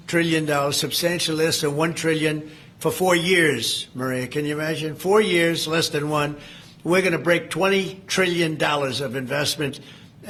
trillion, substantially less than $1 trillion for 4 years, Maria. Can you imagine? 4 years, less than one. We're going to break $20 trillion of investment,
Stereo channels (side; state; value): both; identical; correlation 1.00